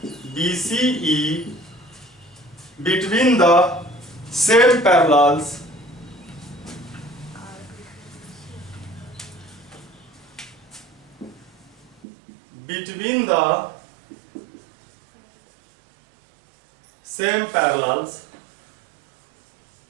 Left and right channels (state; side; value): drops out; left; at 12.0 s